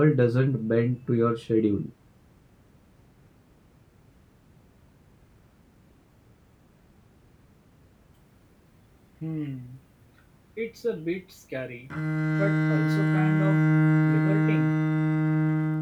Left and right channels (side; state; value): both; identical; correlation 1.00